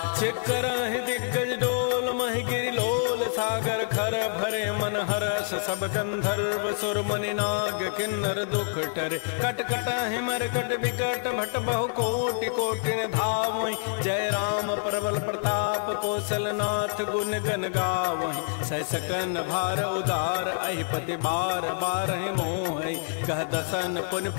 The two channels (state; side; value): silent; right; digital silence